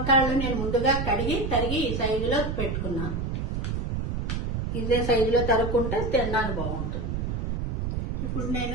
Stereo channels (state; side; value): noise; right; rumble, 1 dB below the sound